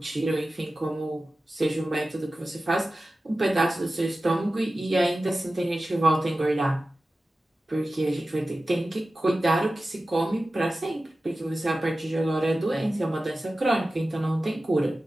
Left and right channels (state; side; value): normal; both; correlation 0.95